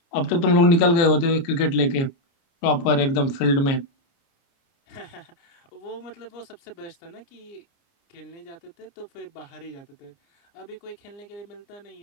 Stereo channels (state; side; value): late; right; 29 ms